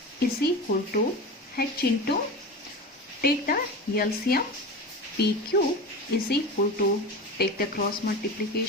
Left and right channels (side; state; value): both; normal; correlation 0.27